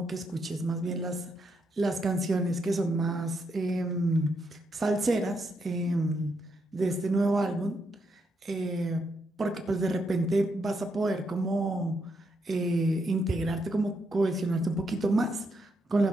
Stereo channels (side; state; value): both; normal; correlation 0.79